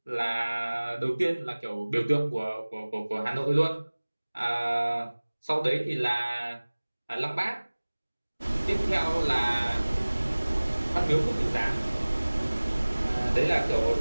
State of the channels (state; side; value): inverted; both; correlation -1.00